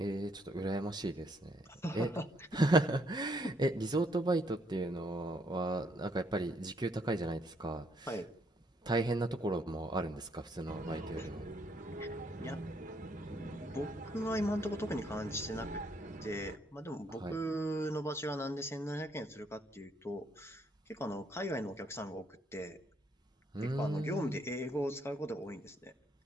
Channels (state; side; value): normal; both; correlation 0.70